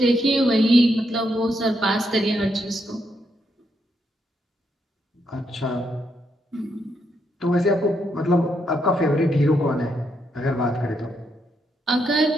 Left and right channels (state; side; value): normal; both; correlation 0.79